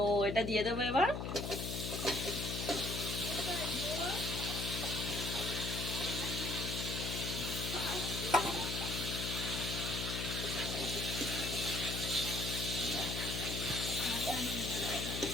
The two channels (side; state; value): left; noise; hum, 3 dB below the sound